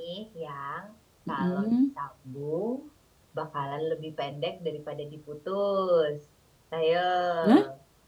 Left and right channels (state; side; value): identical; both; correlation 1.00